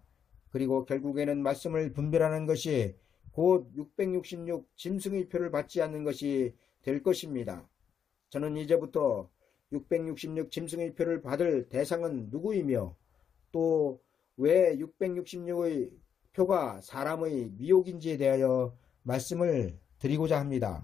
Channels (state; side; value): quieter; right; 7.9 dB